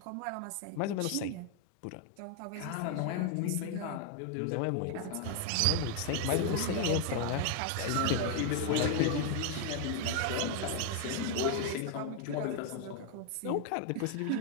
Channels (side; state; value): both; different; correlation 0.00